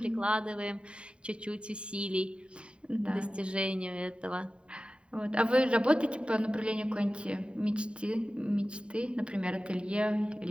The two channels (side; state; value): left; late; 0.055 ms